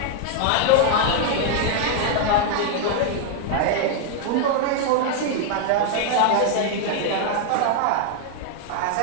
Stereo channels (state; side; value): different; both; correlation 0.00